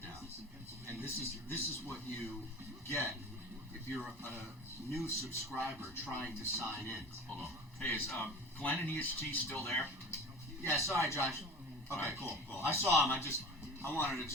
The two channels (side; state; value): both; normal; correlation 0.38